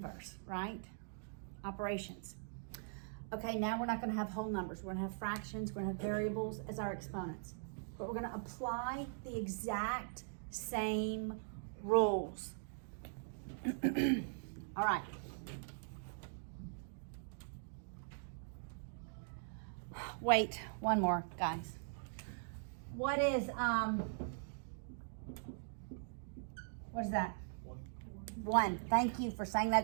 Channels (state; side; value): silent; left; digital silence